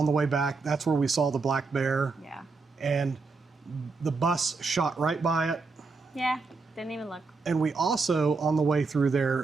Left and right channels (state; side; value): quieter; left; 4.2 dB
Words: the way back, that's where we saw the black bear. Yeah. And the bus shot right by it. Yeah. Didn't even look. And we also, on the way through